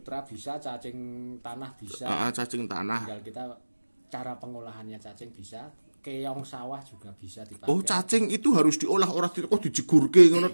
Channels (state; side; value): inverted; both; correlation -1.00